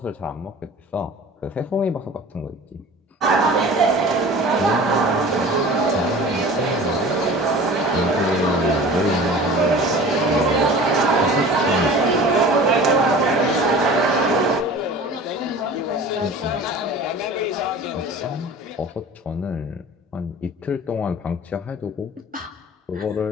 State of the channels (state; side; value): normal; both; correlation 0.41